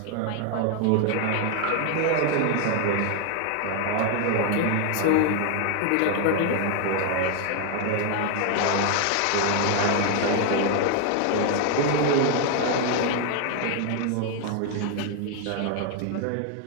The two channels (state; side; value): different; both; correlation 0.01